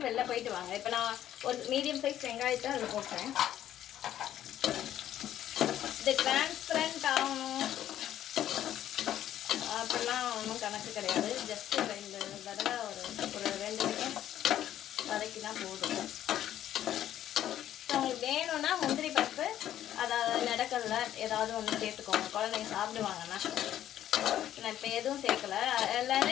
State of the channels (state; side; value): quieter; right; 11.7 dB